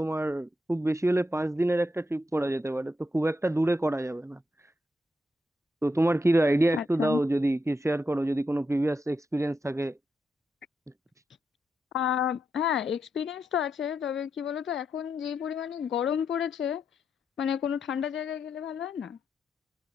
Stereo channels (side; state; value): both; normal; correlation 0.83